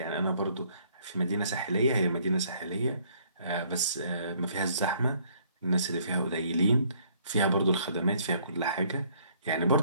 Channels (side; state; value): both; inverted; correlation -0.63